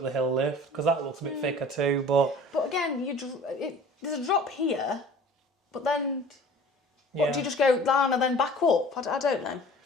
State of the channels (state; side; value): normal; both; correlation 0.45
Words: the hill lift, because that looks a bit thicker too. But But again, there's a drop here, but then yeah, what, do you just go down and then back up? I don't know.